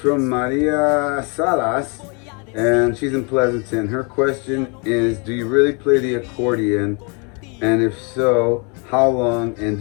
Maria Salas, and she's in Pleasanton. Her question is, do you really play the accordion? And if so, how long? And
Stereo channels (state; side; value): quieter; right; 34.1 dB